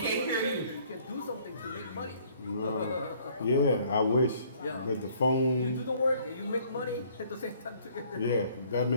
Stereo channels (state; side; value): inverted; both; correlation -0.60